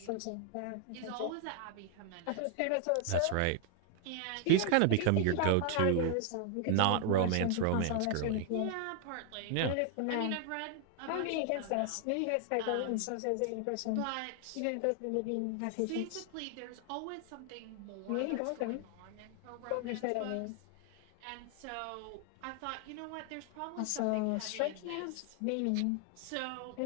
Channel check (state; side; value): different; both; correlation 0.00